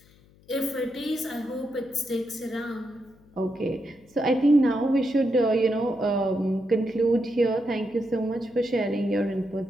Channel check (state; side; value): noise; left; hum, 28 dB below the sound